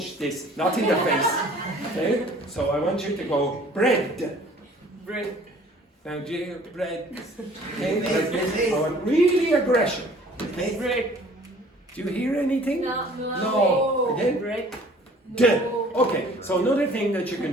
this, not in the face. Okay, so I want you to go bread. Bread. Now, do you hear bread? Okay, like this. I want really aggression. Okay? Bread. Do you hear anything? No. Again? Bread. D. Okay, so another thing that you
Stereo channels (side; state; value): both; normal; correlation 0.52